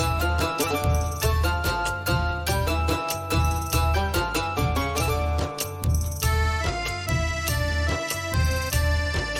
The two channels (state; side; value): identical; both; correlation 1.00